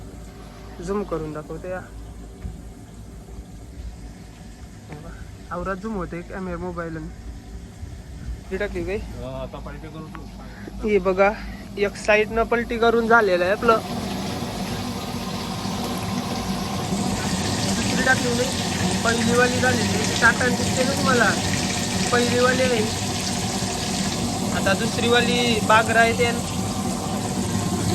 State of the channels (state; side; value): identical; both; correlation 1.00